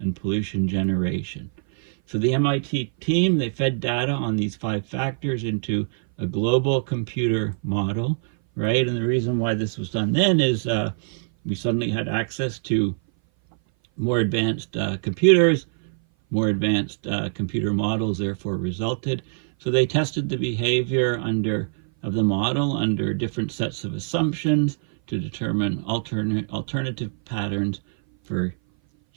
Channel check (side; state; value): left; silent; 58 dB below the other